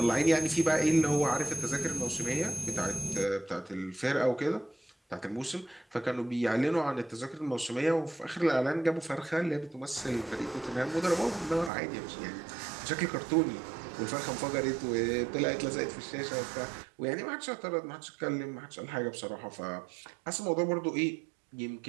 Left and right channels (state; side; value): drops out; left; at 11.7 s